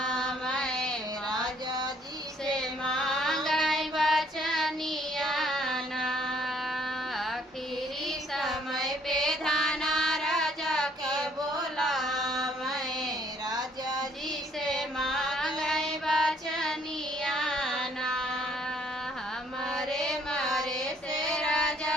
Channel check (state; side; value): normal; both; correlation 0.64